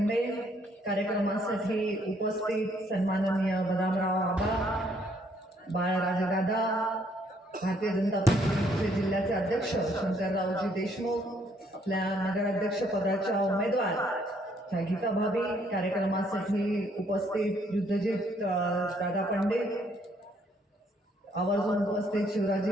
कार्यक्रमासाठी उपस्थित सन्माननीय बदामराव आबा, बाळराजेदादा, भारतीय जनता पक्षाचे जिल्ह्याचे अध्यक्ष शंकररावजी देशमुख, आपल्या नगराध्यक्ष पदाच्या उमेदवार गीता भाभी, कार्यक्रमासाठी उपस्थित युद्धजीत दादा पंडित, आवर्जून उपस्थित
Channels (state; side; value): normal; both; correlation 0.67